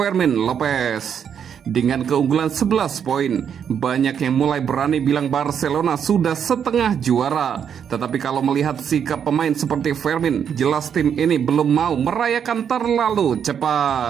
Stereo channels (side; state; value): left; quieter; 8.0 dB